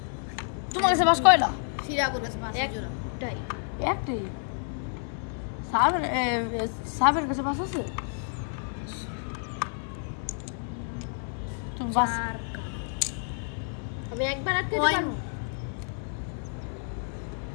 তোমার কাছে পাঁচ কয়টা সিরা করে পাঁচের জোড়া একটাই সাবের কাছে পাঁচ আছে তুমি পাঁচ আমি একবার আটকে পারবো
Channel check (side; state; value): right; silent; digital silence